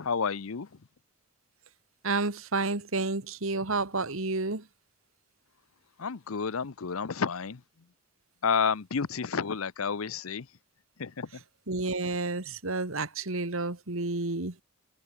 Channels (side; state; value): both; normal; correlation -0.15